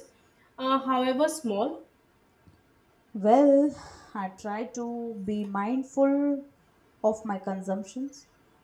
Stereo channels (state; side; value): identical; both; correlation 1.00